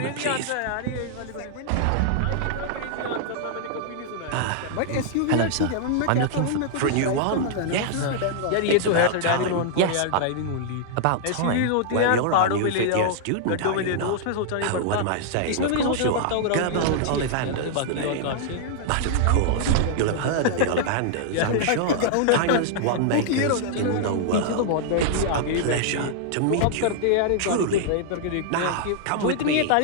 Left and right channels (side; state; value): both; different; correlation -0.01